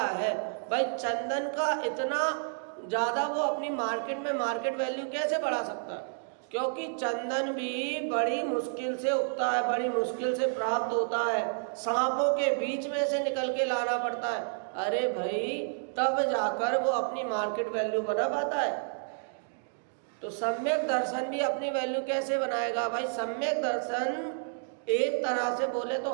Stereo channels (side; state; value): left; silent; digital silence